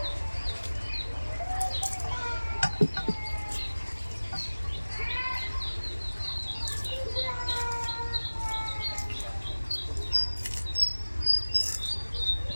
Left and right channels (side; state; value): both; inverted; correlation -1.00